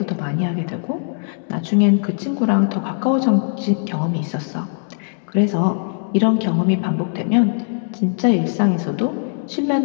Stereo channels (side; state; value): right; silent; digital silence